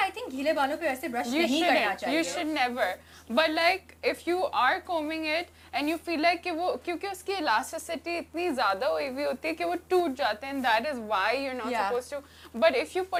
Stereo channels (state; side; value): identical; both; correlation 1.00